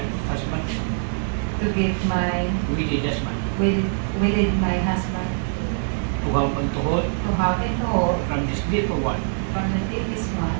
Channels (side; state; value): left; silent; digital silence